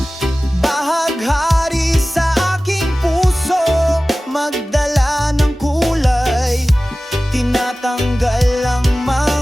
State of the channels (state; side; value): normal; both; correlation 0.97